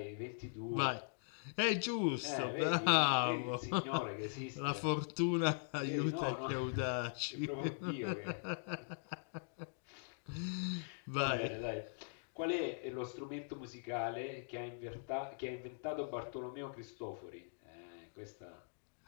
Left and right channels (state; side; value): silent; right; digital silence